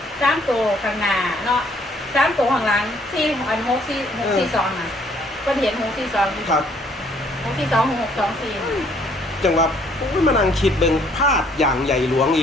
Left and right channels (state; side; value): normal; both; correlation 0.63